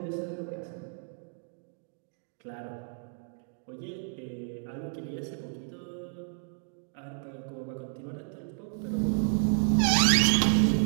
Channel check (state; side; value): silent; left; 57 dB below the other